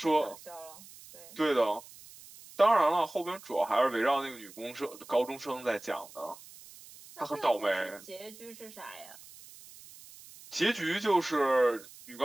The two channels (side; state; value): right; noise; hiss, 19 dB below the sound